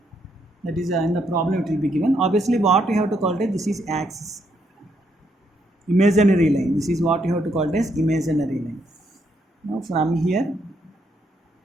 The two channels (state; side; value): normal; both; correlation 0.75